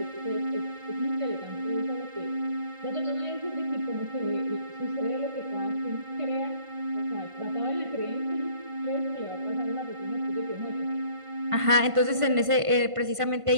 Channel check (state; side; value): late; left; 1.5 ms